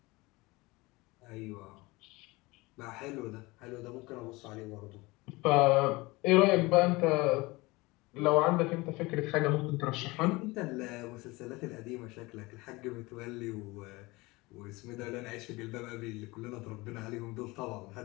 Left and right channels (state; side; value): quieter; right; 22.8 dB